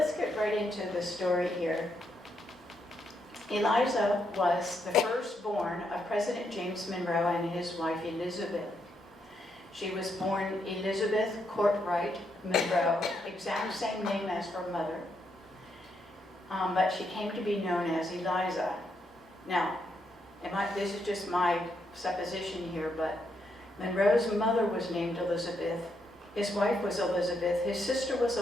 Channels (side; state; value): both; normal; correlation 0.78